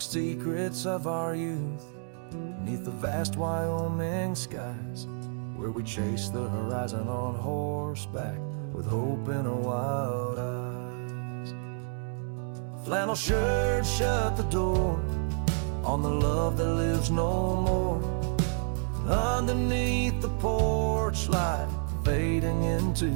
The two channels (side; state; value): left; silent; 58 dB below the other